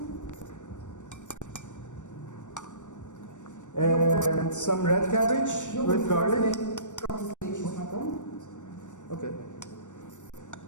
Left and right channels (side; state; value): right; late; 0.85 ms